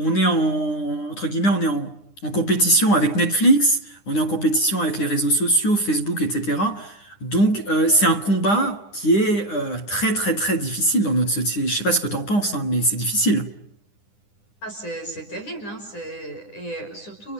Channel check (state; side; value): late; right; 9.9 ms